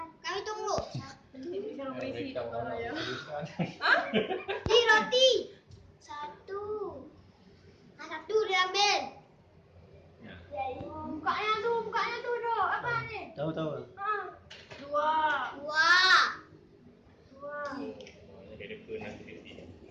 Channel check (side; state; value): both; identical; correlation 1.00